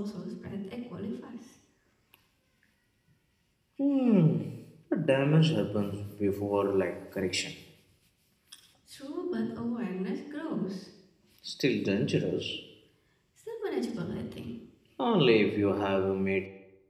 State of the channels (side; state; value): both; identical; correlation 1.00